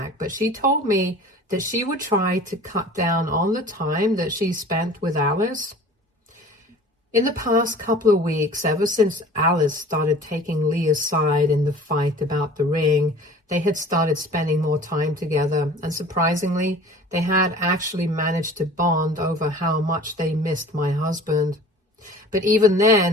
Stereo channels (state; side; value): normal; both; correlation 0.44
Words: but she told me that she would try to cut down on the time that she spent with Alice. In the past couple of weeks, ever since Alice started taking Leah's side in the fight about the ring, they had started spending more time together, and surprisingly, they had actually managed to bond over how much they missed my husband. But even